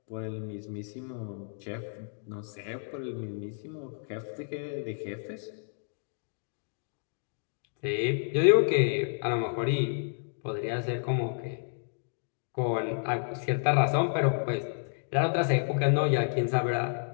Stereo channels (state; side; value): silent; right; digital silence